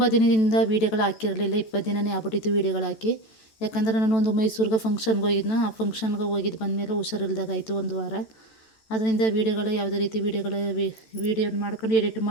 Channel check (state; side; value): late; right; 14 ms